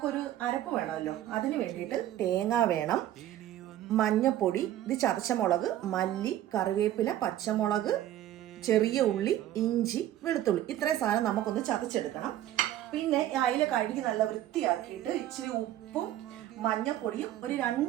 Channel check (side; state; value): left; quieter; 12.9 dB